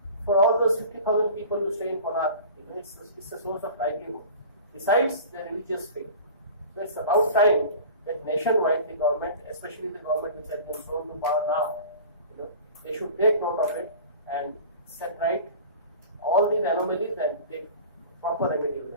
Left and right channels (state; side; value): inverted; both; correlation -0.39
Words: for all those 50,000 people who stay in Konark, it's a source of livelihood. Besides the religious faith. So it's about time that nationwide the government, especially the government which has been thrown to power now, they should take note of it and set right all these anomalies and take proper remedial